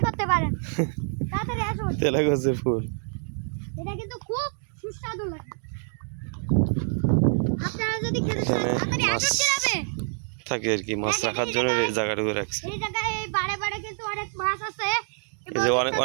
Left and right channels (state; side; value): silent; left; 60 dB below the other